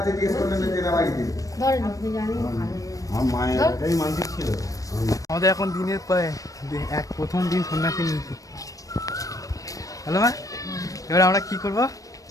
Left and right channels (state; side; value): late; right; 0.16 ms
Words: আমাদের এখন দিনের প্রায় প্রথম দিন সন্ন্যাসী নিয়েছি। হ্যালো মা, এবার আমরা কি করবো?